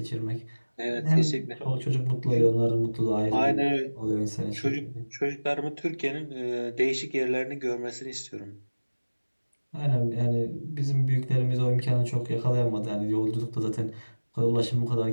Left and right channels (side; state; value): both; inverted; correlation -1.00